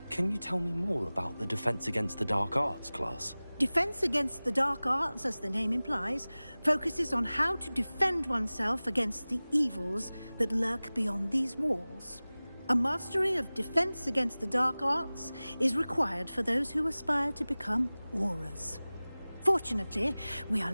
Can you tell me more about the Defense Against the Dark Arts class? Defense Against the Dark Arts, as the name implies, focuses on how to defend oneself against the evils that lurk beyond these walls. A mastery of Defense Against the Dark Arts is required for those who aspire to become Aurors. Fortunately, we are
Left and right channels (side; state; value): both; inverted; correlation -0.99